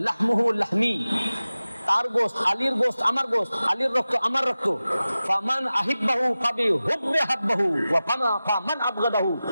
লাহমুহু লাহমি, তার গোশত আলীর গোশত আমার গোশত, আলীর রক্ত আমার রক্ত। ফামান আহিব্বাহু ফাবি হুব্বি হাব্বাহু ওয়া ফামান আবগাদাহু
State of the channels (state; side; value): inverted; both; correlation -0.95